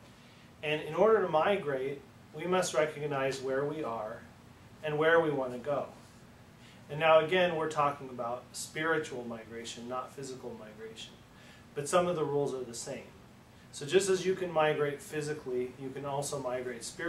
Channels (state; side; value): identical; both; correlation 1.00